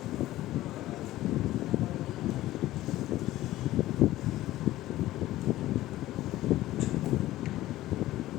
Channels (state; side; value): quieter; right; 15.6 dB